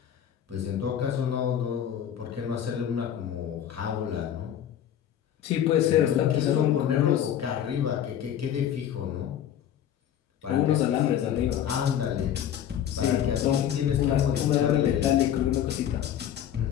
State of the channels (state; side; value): quieter; right; 10.0 dB